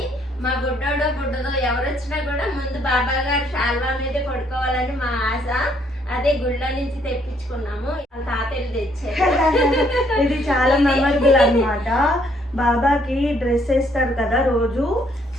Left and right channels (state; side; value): normal; both; correlation 0.67